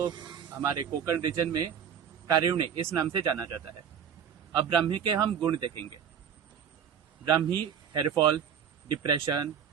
हमारे कोकण रीजन में कारिवणी इस नाम से जाना जाता है। अब ब्राह्मी के हम गुण देखेंगे। ब्राह्मी हेयरफॉल, डिप्रेशन,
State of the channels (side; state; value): left; quieter; 8.1 dB